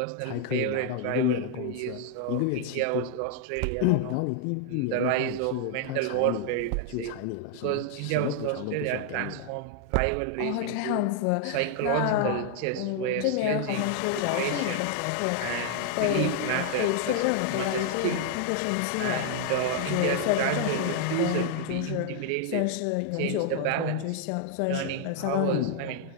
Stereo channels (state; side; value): different; both; correlation 0.00